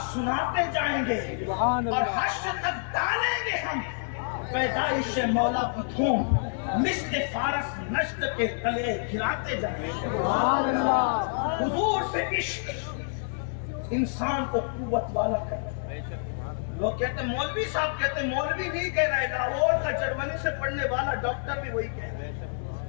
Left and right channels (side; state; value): right; silent; digital silence